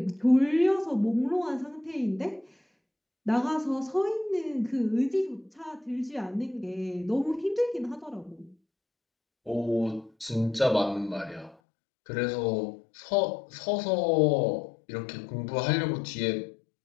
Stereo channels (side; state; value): right; drops out; at 11.6 s